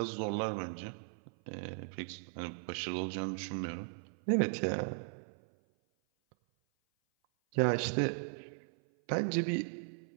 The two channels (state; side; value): silent; left; 53 dB below the other